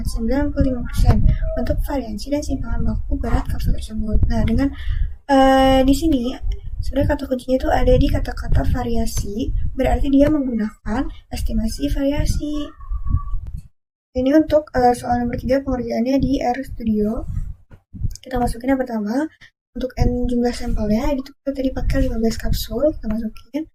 95% untuk variasi dan simpangan baku berat kapsul tersebut. Nah, dengan di sini sebenarnya kata kuncinya itu ada di kata-kata variasi, berarti dia menggunakan estimasi variasi. Ini untuk soal nomor 3 pengerjaannya di RStudio. Kita masukin yang pertama, untuk N jumlah sampelnya, itu kita tadi pakai 15 kapsul, kita masukin.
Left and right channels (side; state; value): both; identical; correlation 1.00